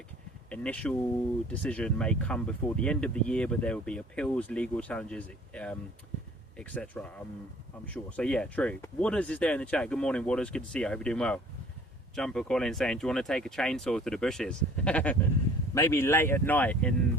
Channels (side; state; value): both; normal; correlation 0.52